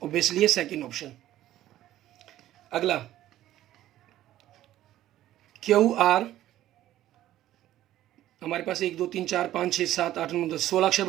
ऑब्वियसली है सेकेंड ऑप्शन। अगला QR, हमारे पास 1 2 3 4 5 6 7 8 9 10 16 अक्षर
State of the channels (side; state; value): left; quieter; 13.6 dB